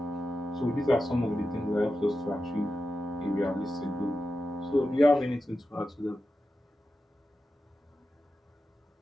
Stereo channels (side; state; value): both; normal; correlation 0.91